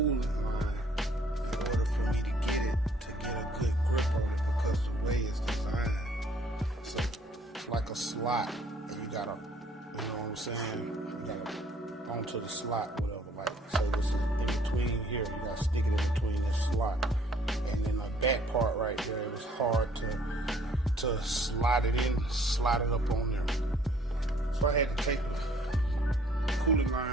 line in order for me to get a good grip on it because the way it's designed. So it's like a slot, and you gotta, you know what I'm saying? You gotta onto the slot, whatever. Like, so this is in between here. You gotta stick it in between this slot, and then the back part right there, it was hard to slide it in, slide it up on there. So I had to take the cooling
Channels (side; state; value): both; normal; correlation 0.60